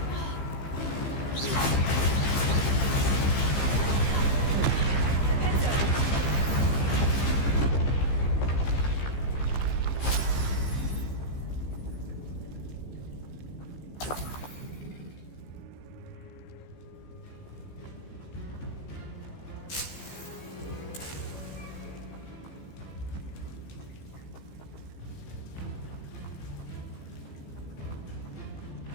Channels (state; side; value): late; right; 15 ms